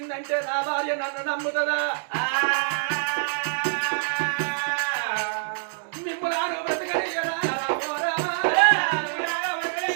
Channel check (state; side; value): silent; left; 61 dB below the other